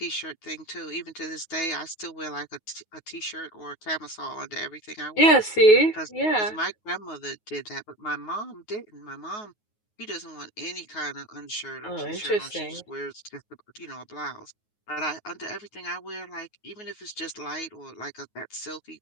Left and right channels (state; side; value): late; right; 9.4 ms